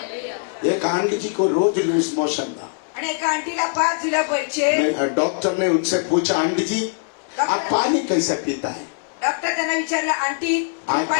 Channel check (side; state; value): right; silent; digital silence